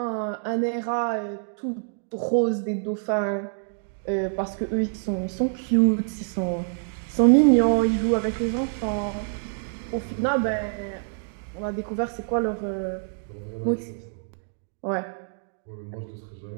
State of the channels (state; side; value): silent; left; digital silence